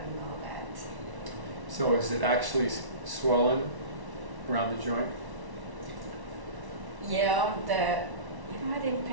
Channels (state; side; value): late; left; 1.1 ms